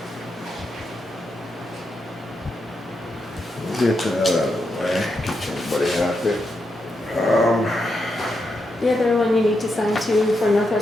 get that out of the way, keep everybody happy. The other one you need to sign too for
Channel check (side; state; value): both; normal; correlation 0.84